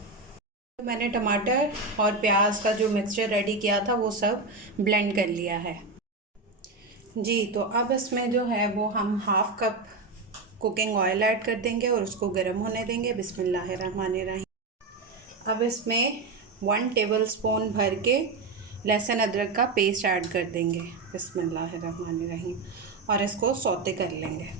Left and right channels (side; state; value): left; quieter; 3.7 dB